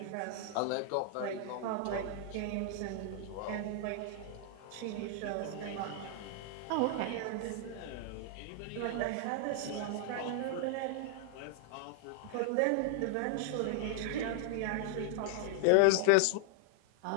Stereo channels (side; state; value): both; different; correlation 0.00